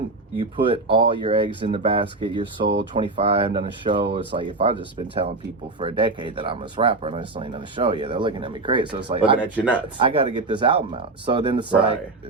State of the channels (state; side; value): quieter; left; 3.3 dB